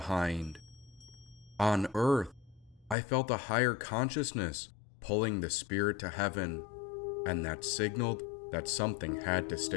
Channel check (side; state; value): right; drops out; at 3.0 s